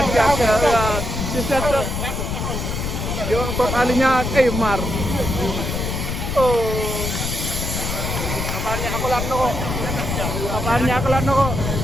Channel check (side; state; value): left; noise; rumble, 3 dB below the sound